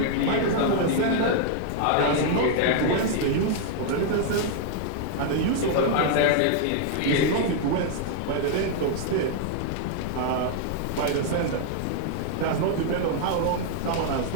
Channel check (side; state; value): both; different; correlation 0.00